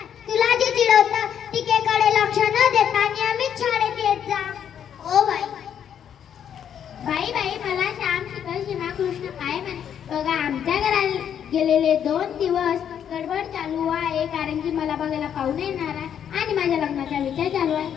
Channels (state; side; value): quieter; right; 8.9 dB